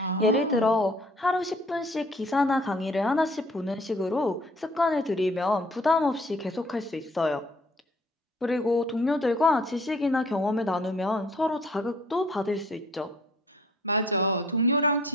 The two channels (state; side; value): normal; both; correlation 0.56